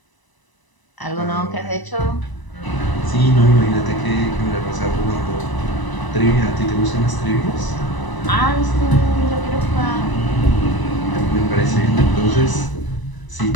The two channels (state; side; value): late; right; 1.0 ms